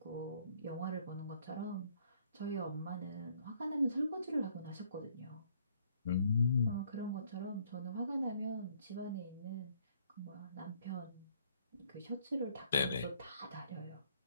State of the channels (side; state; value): both; inverted; correlation -0.64